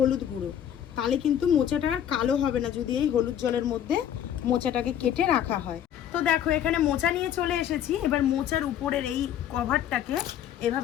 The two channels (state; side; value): quieter; right; 10.1 dB